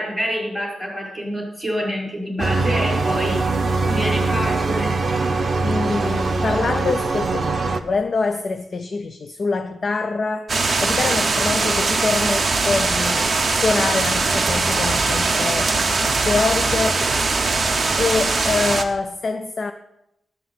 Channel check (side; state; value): both; normal; correlation 0.87